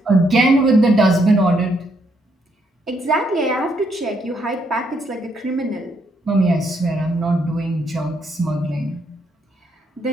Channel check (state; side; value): normal; both; correlation 0.74